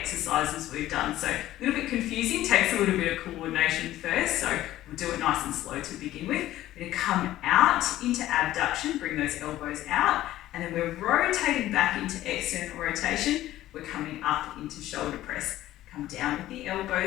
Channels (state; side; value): quieter; right; 14.6 dB